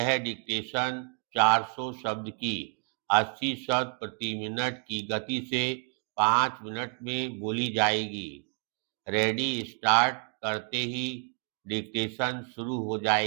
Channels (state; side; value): quieter; left; 38.8 dB